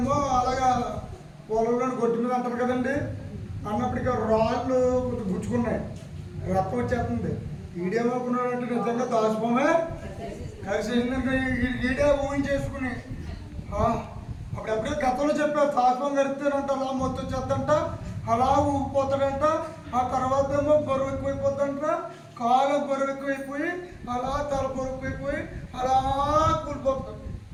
అలాగా పొలంలో గొడ్డు మీద అంటారు కదండి, అన్నప్పటికీ రాళ్ళు గుచ్చుకున్నాయి, రక్తం వచ్చేస్తుంది. ఈడేమనుకున్నాడంటే నిజంగా దాచిపోమే కలిసేసిందంటే ఈడే ఊహించేసుకుని అప్పుడెప్పుడే గతంలో చెప్పారు తాత్వం గడితేనంట అలా మొత్తం వచ్చేద్దంట, అలా ఊగిపోతాడంట. ఆ తర్వాత ఏమో బరువు ఎక్కువైపోద్దంట, కాలు బరువెక్కువైపోయి అలా తల బరువైపోయి అలా కూలిపోతారు.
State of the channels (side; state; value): both; identical; correlation 1.00